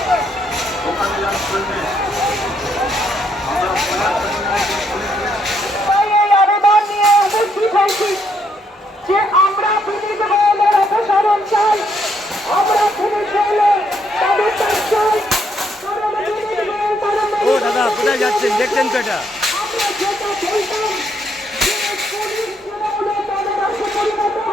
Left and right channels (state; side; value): normal; both; correlation 0.73